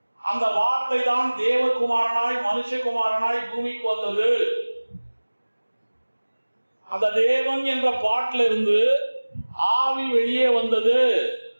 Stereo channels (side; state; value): both; inverted; correlation -1.00